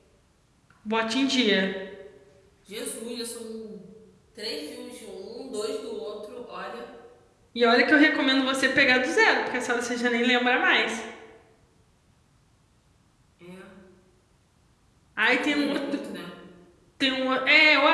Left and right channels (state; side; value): identical; both; correlation 1.00